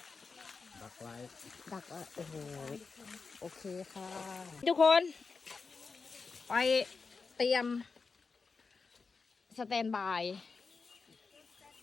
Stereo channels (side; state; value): right; quieter; 4.7 dB